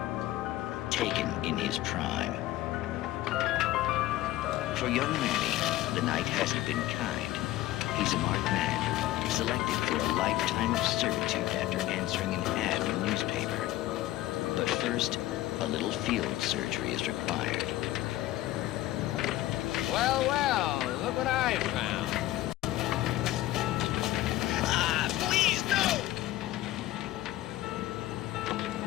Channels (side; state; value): right; quieter; 15.5 dB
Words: taken in his prime. For young Manny, the night hasn't been kind. He's a marked man, selected for a lifetime of servitude after answering an ad in the newspaper. But first, a little field surgery is required. Well, well, look what I found. Ah, please, no!